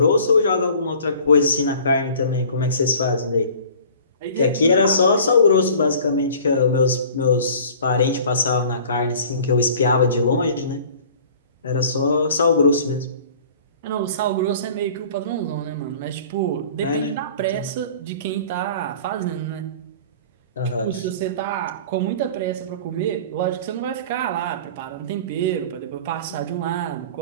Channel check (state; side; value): inverted; both; correlation -0.46